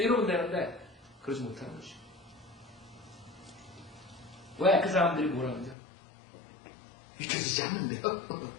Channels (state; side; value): drops out; right; at 5.8 s